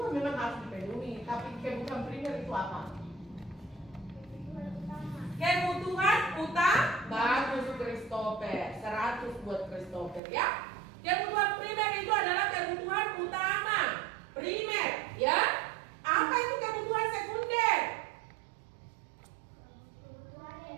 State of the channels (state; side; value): drops out; left; at 10.2 s